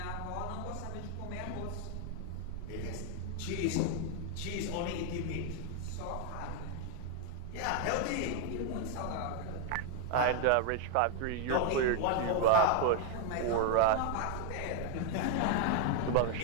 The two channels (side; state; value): both; different; correlation 0.00